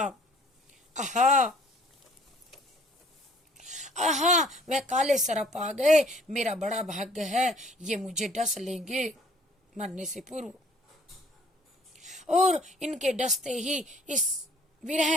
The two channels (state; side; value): normal; both; correlation 0.57